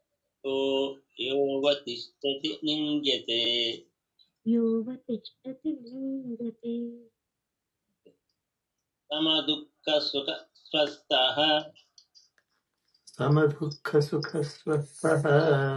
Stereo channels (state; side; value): identical; both; correlation 1.00